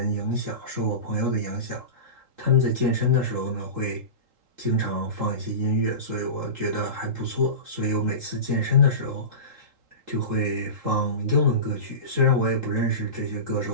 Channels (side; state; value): left; late; 3.8 ms